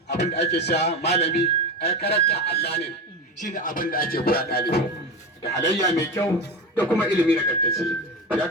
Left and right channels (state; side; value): normal; both; correlation 0.22